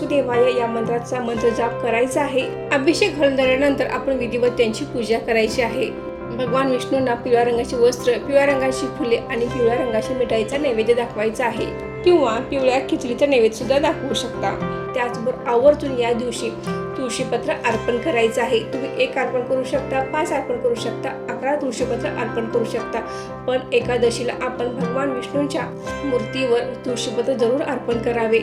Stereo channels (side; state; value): both; identical; correlation 1.00